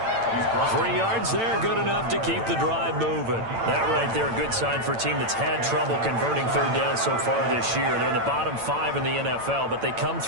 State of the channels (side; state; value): left; late; 8.9 ms